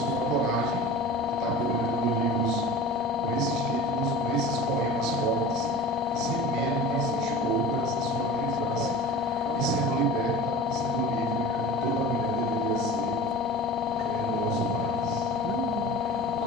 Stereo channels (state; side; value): normal; both; correlation 0.36